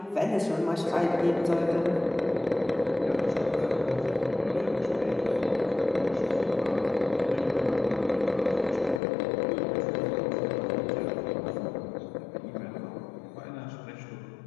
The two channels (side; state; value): right; drops out; at 9.0 s